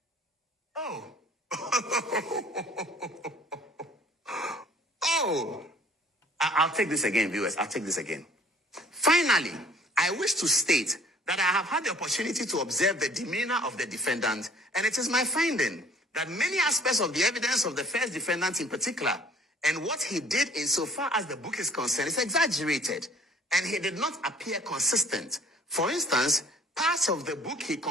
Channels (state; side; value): normal; both; correlation 0.54